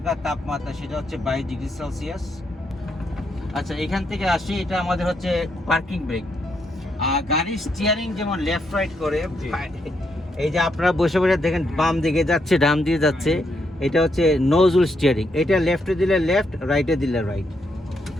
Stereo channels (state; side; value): normal; both; correlation 0.78